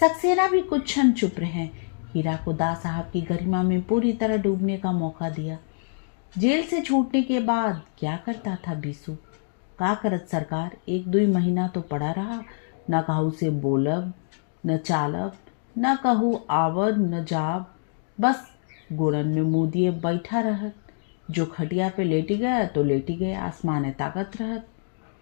भी कुछ क्षण चुप रहे। हीरा को दा साहब की गरिमा में पूरी तरह डूबने का मौका दिया। जेल से छूटने के बाद क्या करता था बीसू? का करत सरकार, 1-2 महीना तो पड़ा रहा। न कहू से बोलब न चालब, न कहू आवद न जाब, बस गुड़न में मुँह दिए बैठा रहत। जो खटिया पे लेटी गया तो लेटी गया, आसमाने ताकत रहत।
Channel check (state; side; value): silent; right; digital silence